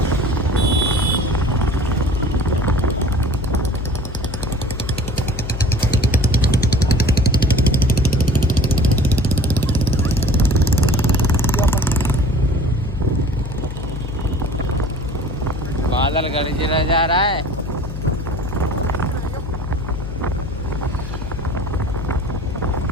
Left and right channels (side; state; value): left; noise; hum, 7 dB below the sound